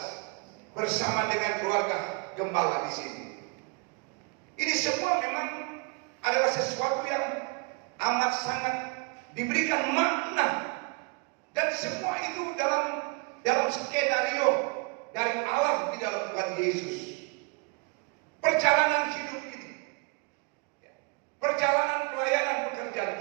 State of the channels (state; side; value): quieter; left; 32.5 dB